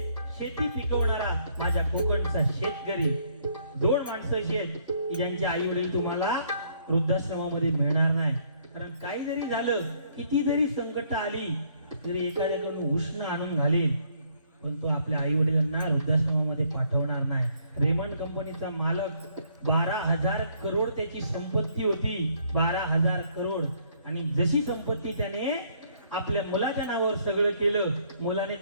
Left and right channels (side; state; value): both; inverted; correlation -0.66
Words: शेती पिकवणारा माझ्या कोकणचा शेतकरी. 2 माणसं अशी आहेत की ज्यांचे आई वडील तुम्हाला वृद्धाश्रमामध्ये मिळणार नाही. कारण काही जरी झालं, किती जरी संकट आली तरी एखाद्याकडून उष्ण आणून घालेल, पण तो आपल्या आई वडिलांना वृद्धाश्रमामध्ये पाठवणार नाही. रेमंड कंपनीचा मालक 12,000 करोड त्याची संपत्ती होती, 12,000 करोड. आणि जशी संपत्ती त्याने आपल्या मुलाच्या नावावर सगळं केलं, मुलाने